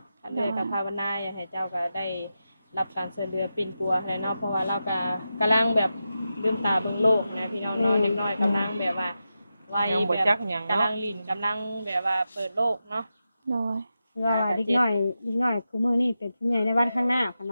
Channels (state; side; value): inverted; both; correlation -0.90